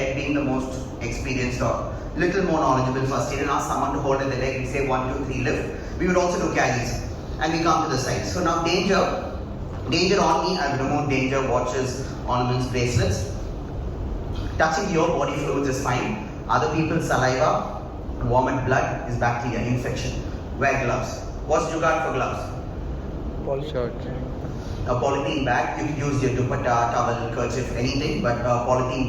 being the most experienced or little more knowledgeable first aid, and ask someone to hold at the leg. We say 1, 2, 3 lift. We would also do carries. And we come to the side. So now danger on me, I've removed danger watches, ornaments, bracelets. Touching your body fluids is fine. Other people's saliva, vomit, blood is bacteria, infection. Wear gloves. What's jugaad for gloves? Shirt. A polythene bag, you could use your dupatta, towel, kerchief, anything, but a polythene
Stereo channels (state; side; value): identical; both; correlation 1.00